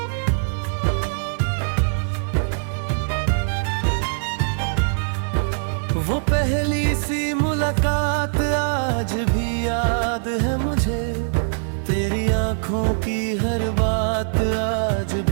वो पहली सी मुलाकात आज भी याद है मुझे, तेरी आंखों की हर बात आज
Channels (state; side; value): silent; left; 56 dB below the other